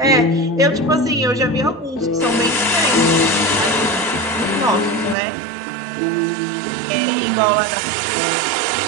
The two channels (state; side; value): drops out; left; at 5.2 s